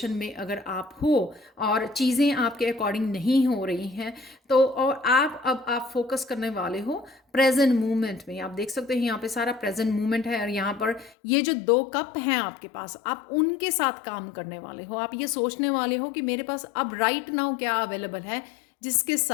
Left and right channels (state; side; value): drops out; right; at 11.2 s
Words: में अगर आप हो और चीज़ें आपके अकॉर्डिंग नहीं हो रही हैं, तो और आप फोकस करने वाले हो प्रेजेंट मोमेंट में। आप देख सकते हैं यहाँ पे सारा प्रेजेंट मोमेंट है, और यहाँ पर ये जो 2 कप हैं आपके पास, आप उनके साथ काम करने वाले हो। आप ये सोचने वाले हो कि मेरे पास अब राइट नाउ क्या अवेलेबल है जिसके